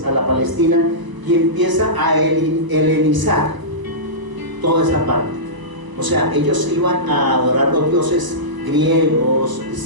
a la Palestina, y empieza a helenizar toda esa parte. O sea, ellos iban a adorar los dioses griegos,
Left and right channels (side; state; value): left; late; 1.0 ms